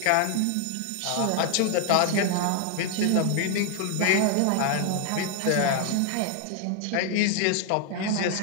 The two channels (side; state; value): both; different; correlation 0.00